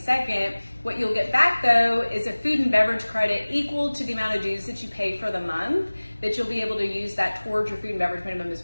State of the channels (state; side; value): inverted; both; correlation -1.00